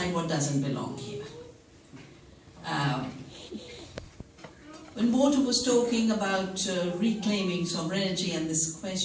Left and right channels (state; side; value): identical; both; correlation 1.00